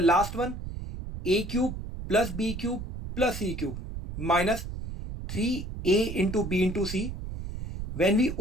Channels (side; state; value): right; noise; rumble, 8 dB below the sound